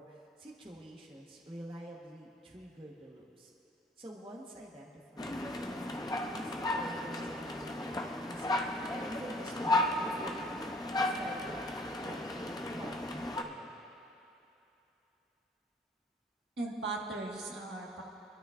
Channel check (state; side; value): normal; both; correlation 0.55